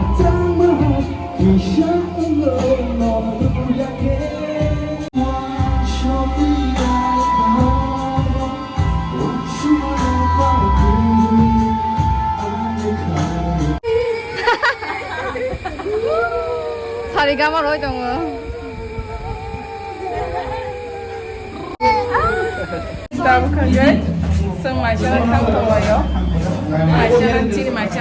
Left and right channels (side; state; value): both; identical; correlation 1.00